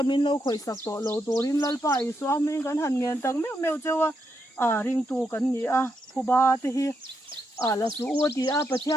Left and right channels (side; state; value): both; normal; correlation 0.81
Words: min lo khoi sak to lo torin lalpa i swam min kan han ngen tak meu chewa ring tu kan ni a phuba te hi la su o ti a